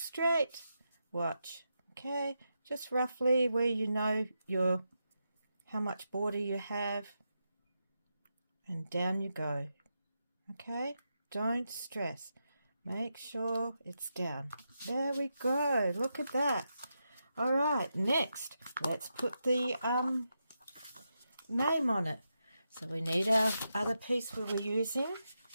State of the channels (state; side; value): inverted; both; correlation -0.86